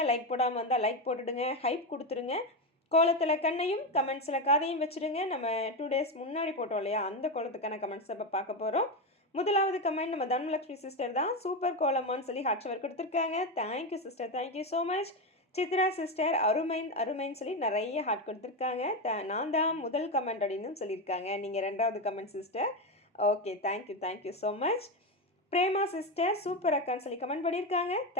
லைக் போடாமல் வந்தால் லைக் போட்டுடுங்க, ஹைப் கொடுத்துருங்க. கோலத்தில் கண்ணையும் கமெண்ட்ஸில் காதையும் வச்சுடுங்க. நம்ம 2 டேஸ் முன்னாடி போட்டோம் இல்லையா, அந்த கோலத்துக்கான கமெண்ட்ஸை இப்போ பார்க்க போகிறோம். முதலாவது கமெண்ட் நம்ம தனலட்சுமி சிஸ்டர் தான். சூப்பர் கோலமான்னு சொல்லி ஹாட்சவர் கொடுத்துருக்காங்க. Thank you sister, thank you so much. Chitra sister அருமைன்னு சொல்லி நிறைய ஹார்ட் கொடுத்துருக்காங்க. நான் தான் முதல் கமெண்ட் அப்படின்னு சொல்லியிருக்காங்க. நீங்கள் ரெண்டாவது comment sister. Okay, thank you so much. Prema sister super அக்கான்னு சொல்லி கமெண்ட் பண்ணியிருக்காங்க.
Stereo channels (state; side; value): normal; both; correlation 0.13